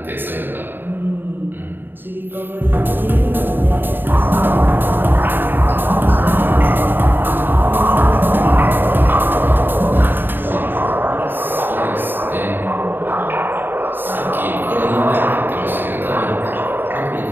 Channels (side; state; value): left; late; 0.095 ms